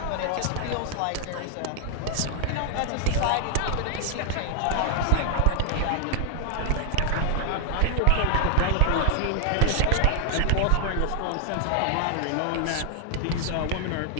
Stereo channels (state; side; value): different; both; correlation 0.00